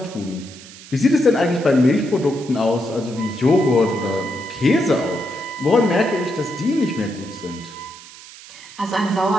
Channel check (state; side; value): noise; right; hiss, 18 dB below the sound